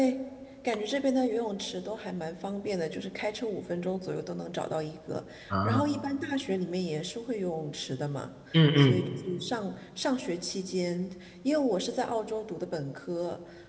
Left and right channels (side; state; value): both; identical; correlation 1.00